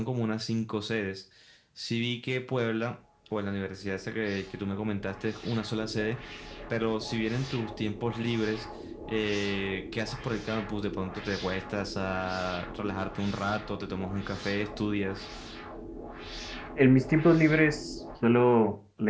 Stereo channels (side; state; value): both; identical; correlation 1.00